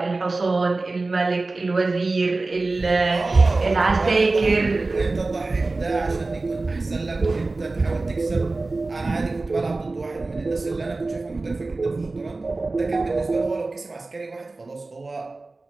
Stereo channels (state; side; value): quieter; left; 3.4 dB